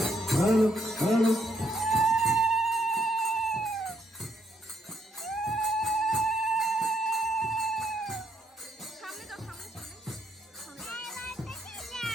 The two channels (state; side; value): normal; both; correlation 0.75